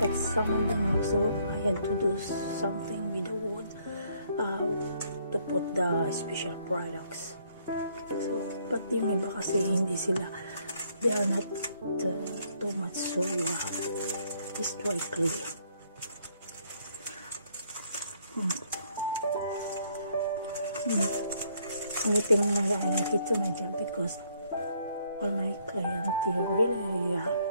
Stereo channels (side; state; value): both; inverted; correlation -0.67